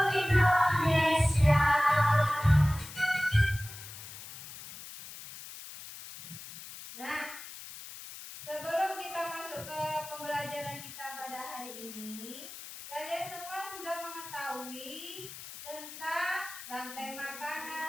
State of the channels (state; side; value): noise; left; hiss, 13 dB below the sound